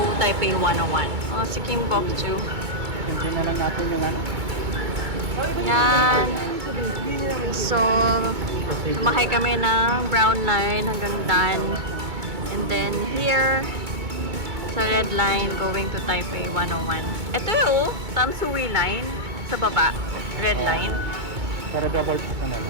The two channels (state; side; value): late; left; 2.2 ms